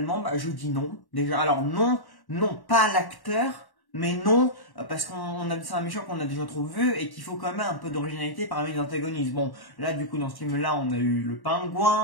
je dis non. Déjà, alors non, pas l'acteur. Mais non, parce c'est un méchant qu'on a déjà trop vu et qu'il faut quand même un peu d'originalité parmi les antagonistes. Bon, là du coup dans ce film-là, on a eu le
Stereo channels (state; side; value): late; right; 1.1 ms